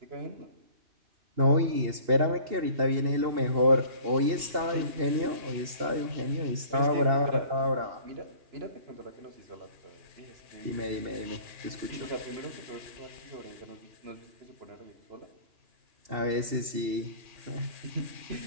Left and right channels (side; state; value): left; late; 2.7 ms